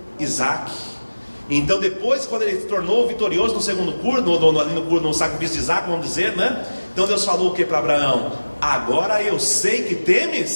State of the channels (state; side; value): inverted; both; correlation -1.00